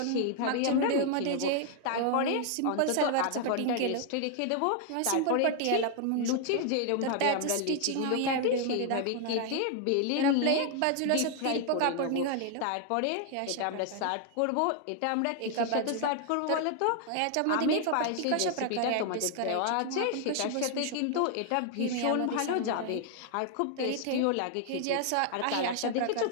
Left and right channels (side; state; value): both; different; correlation 0.00